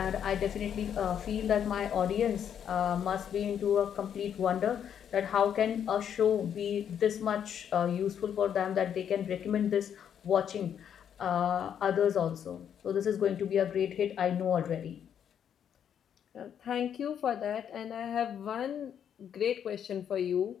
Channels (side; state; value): right; quieter; 8.8 dB